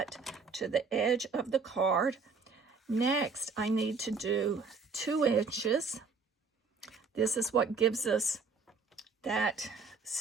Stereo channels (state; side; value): quieter; left; 4.6 dB